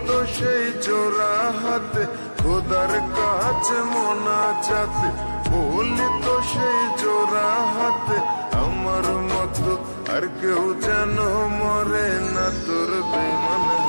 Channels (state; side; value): inverted; both; correlation -1.00